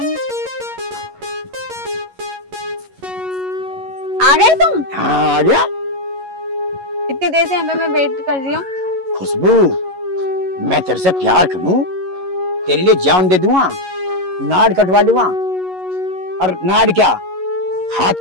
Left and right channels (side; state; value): left; late; 11 ms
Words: आ गए तुम? हाँ आ गया। इतनी देर से यहाँ पे मैं वेट कर रही हूँ। खुशबू, मैं तेरे से प्यार करूं, तेरे लिए जान दे दूंगा, नाड़ कटवा लूंगा, और नाड़ क्या हाथ